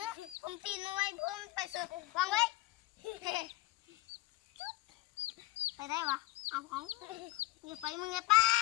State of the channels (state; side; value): quieter; right; 19.0 dB